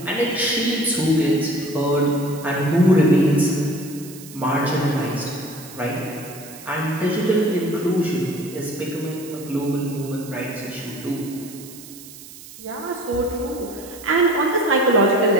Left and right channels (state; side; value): noise; right; hiss, 17 dB below the sound